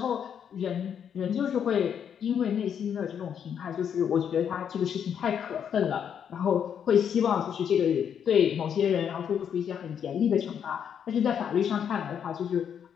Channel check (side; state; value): right; quieter; 8.2 dB